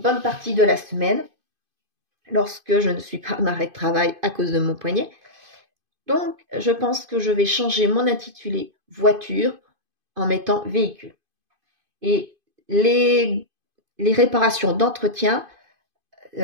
partie de la semaine lorsque je ne suis pas en arrêt de travail à cause de mon poignet. Donc je pense que je vais changer mon intitulé voiture en mettant véhicule. Et les réparations d'entretien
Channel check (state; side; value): late; left; 2.5 ms